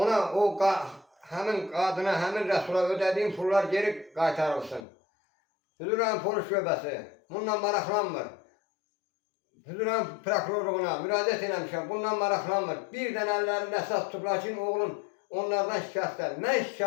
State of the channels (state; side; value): drops out; right; at 4.8 s